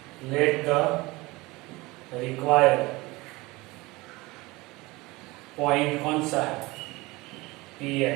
लेट द रिक्वायर्ड पॉइंट कौन सा है,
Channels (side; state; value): left; quieter; 22.1 dB